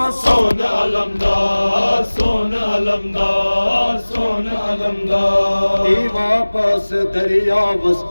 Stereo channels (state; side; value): inverted; both; correlation -1.00